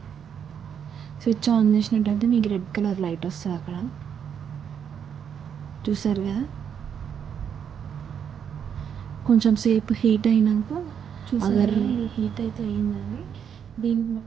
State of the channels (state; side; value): quieter; left; 8.0 dB